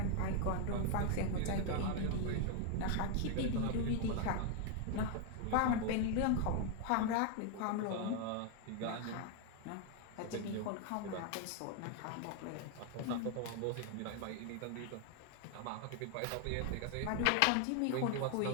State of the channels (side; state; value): both; different; correlation 0.00